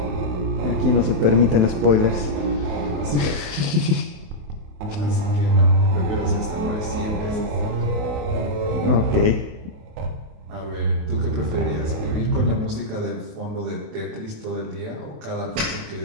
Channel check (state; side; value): late; left; 28 ms